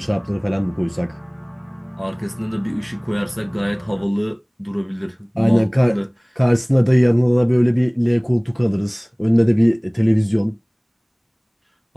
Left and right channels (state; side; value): identical; both; correlation 1.00